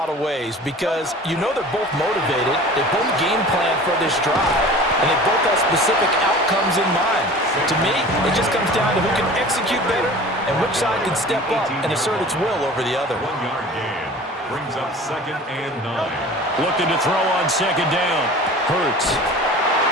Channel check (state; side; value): normal; both; correlation 0.41